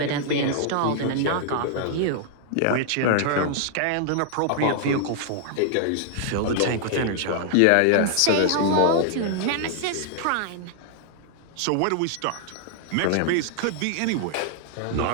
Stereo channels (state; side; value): different; both; correlation 0.00